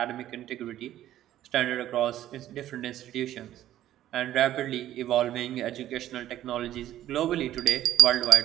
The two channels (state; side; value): quieter; left; 12.8 dB